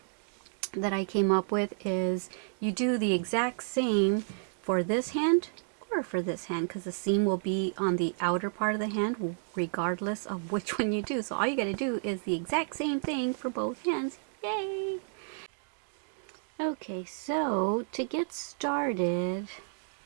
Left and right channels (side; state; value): left; silent; digital silence